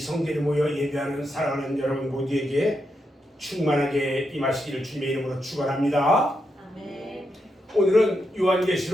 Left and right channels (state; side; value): normal; both; correlation 0.83